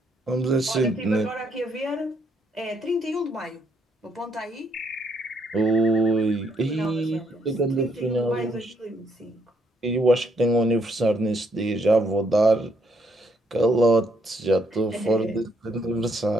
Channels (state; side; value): normal; both; correlation 0.72